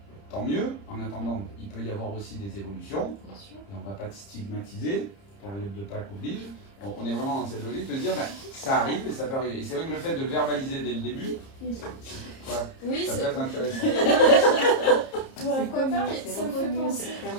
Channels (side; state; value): right; late; 30 ms